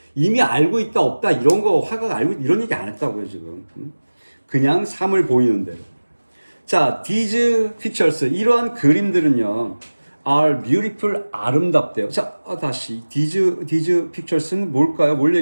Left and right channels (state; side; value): inverted; both; correlation -1.00